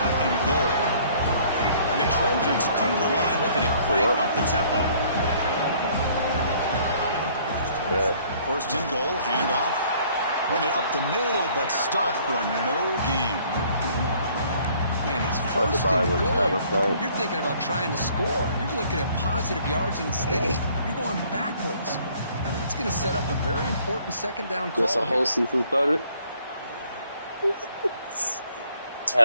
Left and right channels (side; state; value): both; inverted; correlation -0.59